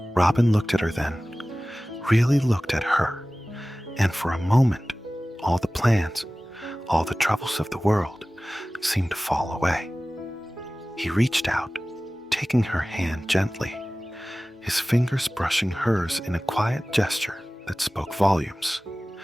Robin looked at her then, really looked at her, and for a moment, all the plans, all the troubles of the world seemed to fall away. He reached out, taking her hand gently, his fingers brushing hers in a quiet gesture that spoke volumes.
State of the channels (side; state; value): both; normal; correlation 0.97